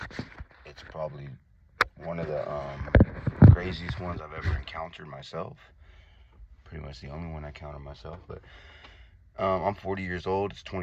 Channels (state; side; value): identical; both; correlation 1.00